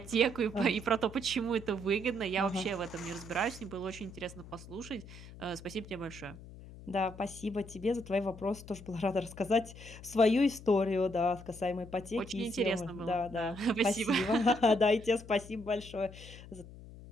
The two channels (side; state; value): left; noise; hum, 16 dB below the sound